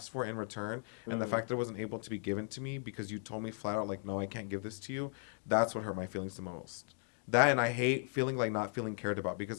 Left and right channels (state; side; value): silent; right; 53 dB below the other